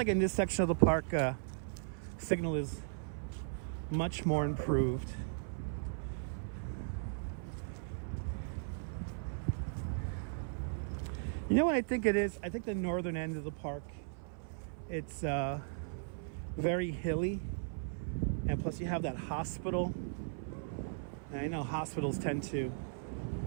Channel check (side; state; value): left; silent; 53 dB below the other